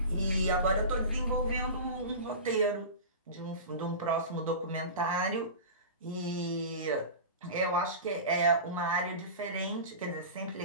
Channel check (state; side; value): inverted; both; correlation -0.31